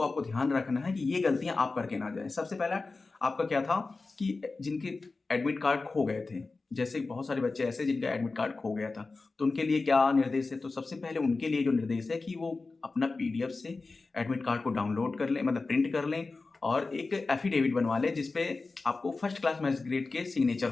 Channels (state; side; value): quieter; right; 3.8 dB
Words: आपको ध्यान रखना है कि ये गलतियां आप करके ना जाए। सबसे पहला आपका क्या था कि जिनके एडमिट कार्ड खो गए थे, जैसे बहुत सारे बच्चे ऐसे जिनका एडमिट कार्ड खो गया था, तो उनके लिए क्या निर्देश है। तो सबसे पहले उनके लिए जो निर्देश है कि वो अपना पीडीएफ से एडमिट कार्ड को डाउनलोड कर लें, मतलब प्रिंट कर लें और एक एफिडेविट बनवा लें, जिसपे आपको फर्स्ट क्लास मैजिस्ट्रेट के सिग्नेचर